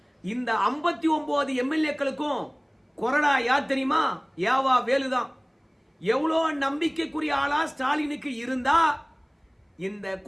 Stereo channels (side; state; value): both; identical; correlation 1.00